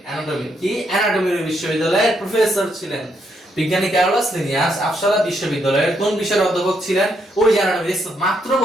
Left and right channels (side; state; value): both; normal; correlation 0.76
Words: কি, অ্যানাটমির বিশ্ববিদ্যালয়ের প্রফেসর ছিলেন। বিজ্ঞানী ক্যারোলাস লিনিয়াস আপসালা বিশ্ববিদ্যালয়ের কোন বিষয়ের অধ্যাপক ছিলেন? ওই জানানো মাত্র